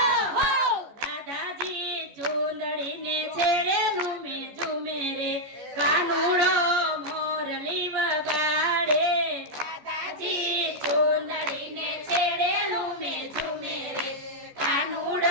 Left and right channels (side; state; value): left; late; 14 ms